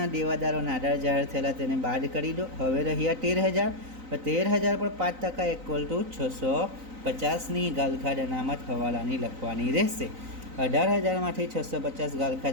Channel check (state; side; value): late; left; 3.9 ms